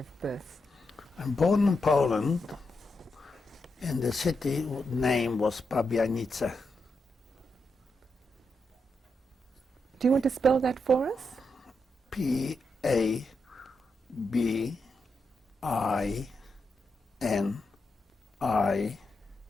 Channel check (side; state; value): both; normal; correlation 0.84